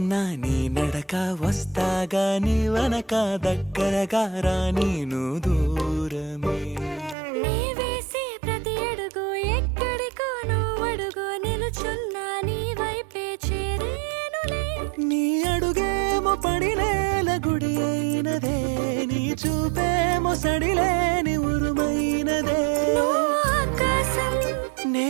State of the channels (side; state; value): left; drops out; at 7.2 s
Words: నీ నడక వస్తాగా, నీ వనక దగ్గరగా రాని నువ్వు దూరమే. నీ వేసే ప్రతి అడుగు ఎక్కడికో నువ్వు అడుగు, నిలుచున్నా నీ వైపే చేరేనులే. నీ అడుగేమో పడినేల గుడి అయినదే, నీ చూపేమో సడిలేని ఉరుమైనదే. నువ్వు ఆకాశం,